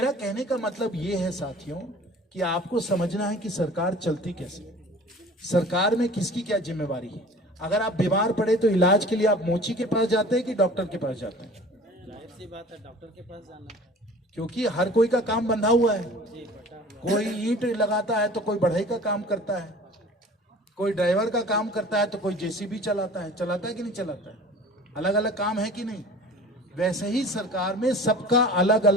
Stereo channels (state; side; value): normal; both; correlation 0.44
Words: कहने का मतलब ये है साथियों, कि आपको समझना है कि सरकार चलती कैसे, सरकार में किसकी क्या जिम्मेवारी है। अगर आप बीमार पड़े तो इलाज के लिए आप मोची के पास जाते हैं कि डॉक्टर के पास जाते हैं? जाहिर सी बात है, डॉक्टर के पास जाना, क्योंकि हर कोई का काम बंधा हुआ है। कोई ईंट लगाता है तो कोई बढ़ई का काम करता है, कोई ड्राइवर का काम करता है, तो कोई जेसीबी चलाता है कि नहीं चलाता है? अलग अलग काम है कि नहीं? वैसे ही सरकार में सबका अलग